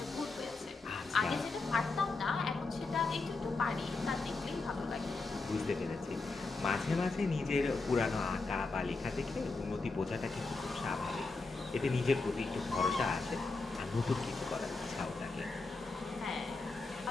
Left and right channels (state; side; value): quieter; right; 3.7 dB